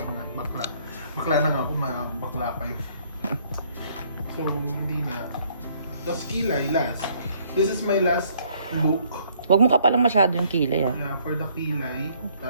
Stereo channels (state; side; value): inverted; both; correlation -0.64